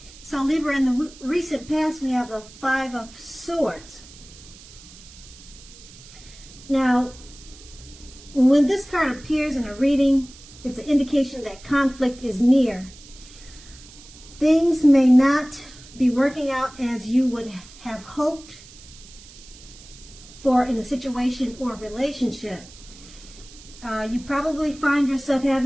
So Libra, in the recent past, we have the Five of Swords. Now, when this card appears in a reading, it's an indication that conflict is near. Things may not be working out as you would have hoped for in a situation or relationship. You probably find yourself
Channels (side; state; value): right; noise; hiss, 20 dB below the sound